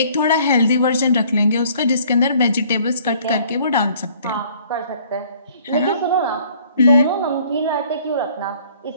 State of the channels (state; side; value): inverted; both; correlation -0.57